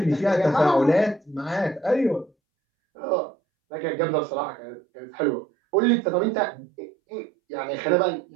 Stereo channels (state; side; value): drops out; left; at 2.3 s